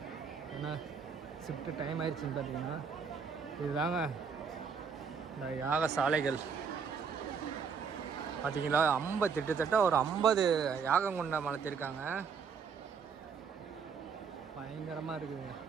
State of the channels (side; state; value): left; quieter; 6.1 dB